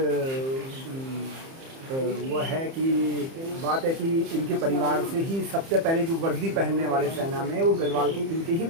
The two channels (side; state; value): left; late; 30 ms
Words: वो है कि बात है कि इनके परिवार से ही सबसे पहले जो वर्दी पहनने वाले सेना में वो गढ़वाल के इनके ही